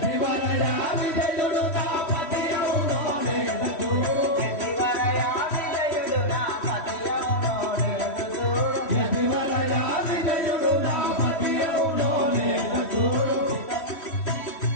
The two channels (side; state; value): right; late; 3.1 ms